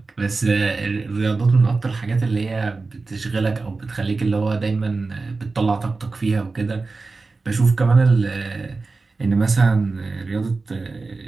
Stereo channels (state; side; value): quieter; left; 3.8 dB